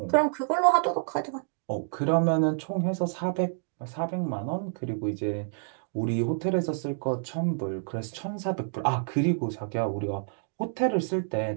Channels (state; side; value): silent; left; digital silence